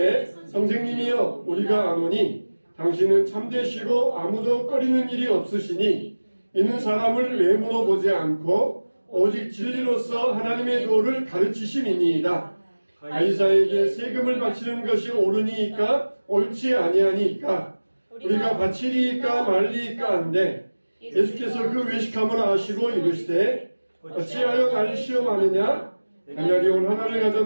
선생님이여 우리가 아노니 당신은 참되시고 아무도 꺼리는 일이 없으시니 이는 사람을 외모로 보지 않고 오직 진리로서 하나님의 도를 가르치심이니이다. 가이사에게 세금을 바치는 것이 옳으니까 옳지 아니하니까 우리가 바치리이까 말리이까 한데 예수께서 그 외식함을 아시고 이르시되 어찌하여 나를 시험하느냐 가냐리 온 하나를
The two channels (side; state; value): both; inverted; correlation -1.00